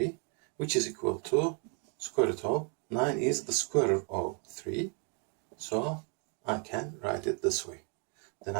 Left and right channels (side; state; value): left; quieter; 37.9 dB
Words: which is equal to square root of 9 is the square root of 3, so I can write it this way. Then